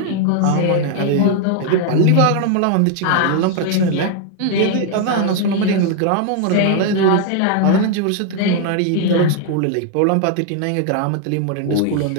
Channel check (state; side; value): different; both; correlation 0.00